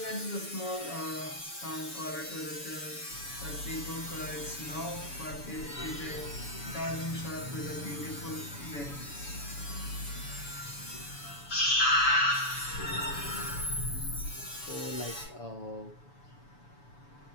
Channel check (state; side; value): late; right; 7.0 ms